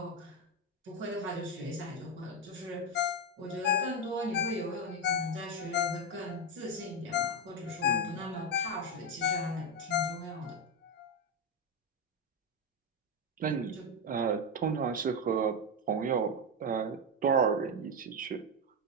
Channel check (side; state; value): both; normal; correlation 0.08